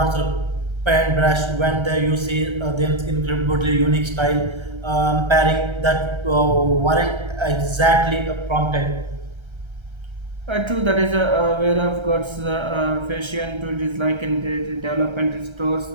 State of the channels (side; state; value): left; late; 1.3 ms